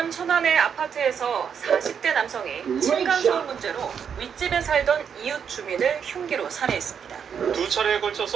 천안의 아파트에서 40대 남성이 층간소음 문제로 윗집에 살던 이웃 주민을 흉기로 살해했습니다. 두 차례에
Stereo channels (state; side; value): quieter; left; 7.4 dB